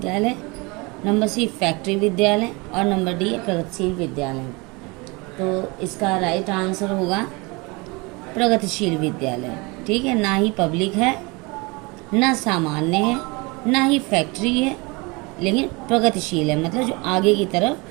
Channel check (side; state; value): left; quieter; 26.7 dB